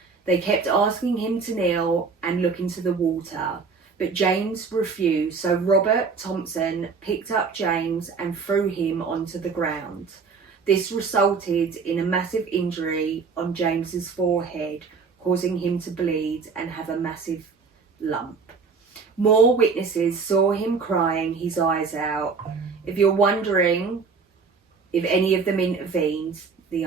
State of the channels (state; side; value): quieter; left; 5.0 dB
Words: They kept asking him to kneel and look into the water, but James refused, so Robert Thompson picked up James and threw him onto the ground. This resulted in a massive injury on James's forehead, causing him to bleed and have a massive lump. More witnesses saw him crying his eyes out. If you're wondering if any of them intervened, the